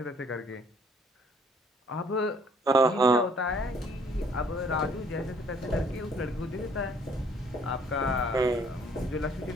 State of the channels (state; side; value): normal; both; correlation 0.60